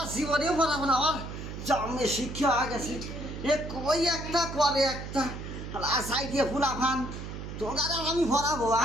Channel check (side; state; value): right; noise; hum, 8 dB below the sound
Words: জীবনেও পড়াবো না আমার জন্মে শিক্ষা হয়ে গেছে এ কই একটা করে একটা আশাই দিয়ে ফুলাফান তোর আমি পড়াবো